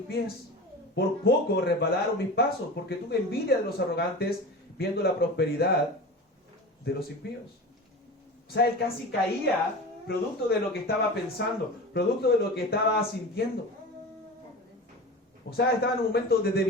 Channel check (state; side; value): normal; both; correlation 0.31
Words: pies, por poco resbalaron mis pasos, porque tuve envidia de los arrogantes, viendo la prosperidad de los impíos. O sea, él casi caía producto de lo que estaba pensando, producto de lo que estaba sintiendo. O sea, estaba en un momento de